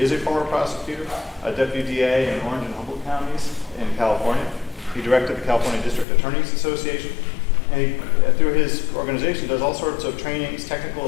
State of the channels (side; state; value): right; drops out; at 6.1 s